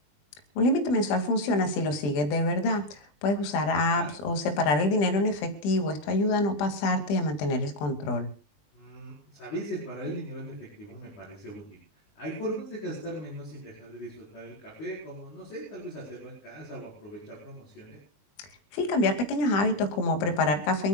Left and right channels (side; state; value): right; late; 20 ms